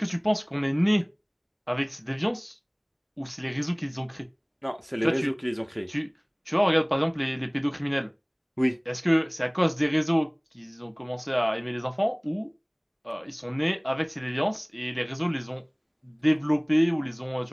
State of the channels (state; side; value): identical; both; correlation 1.00